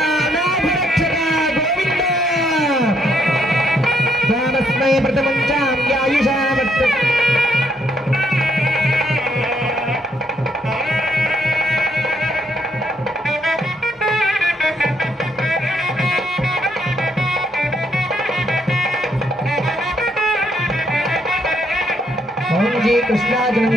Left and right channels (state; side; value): normal; both; correlation 0.72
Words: అనాథరక్షక గోవింద దానస్మై ప్రథమంచాం యాయుషా వర్త ఓం జీ కృష్ణాజనం